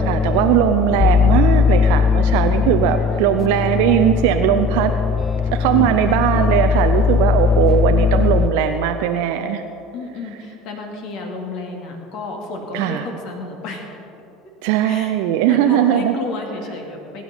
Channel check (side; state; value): both; normal; correlation 0.38